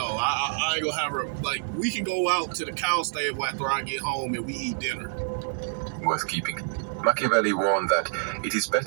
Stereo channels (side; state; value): left; silent; 59 dB below the other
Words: I ain't gonna have her, like, we can go out to the cow stable after I get home and we eat dinner. Worth keeping. Machiavelli warned that it is